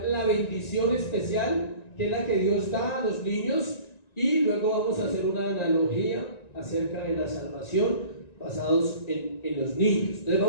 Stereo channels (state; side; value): late; right; 1.9 ms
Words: la bendición especial, que es la que Dios da a los niños, y luego vamos a hacer una analogía acerca de la salvación basados en los niños. Entonces